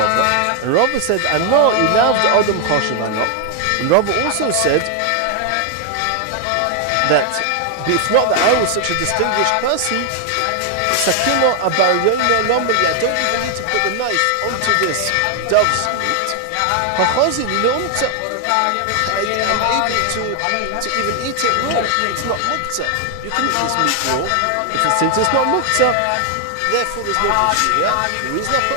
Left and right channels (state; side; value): different; both; correlation 0.00